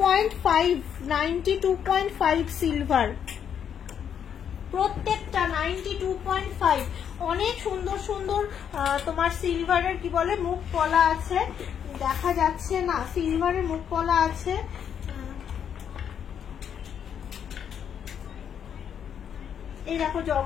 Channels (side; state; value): right; quieter; 8.4 dB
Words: সিলভার, প্রত্যেকটা 92.5। অনেক সুন্দর সুন্দর তোমার সিলভারের কি বলে মুখ পলা আছে, দেখা যাচ্ছে না, সিলভারের মুখ পলা আছে। এই দেখো